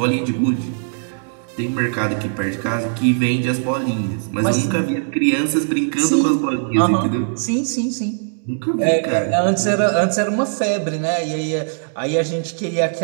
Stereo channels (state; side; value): silent; left; digital silence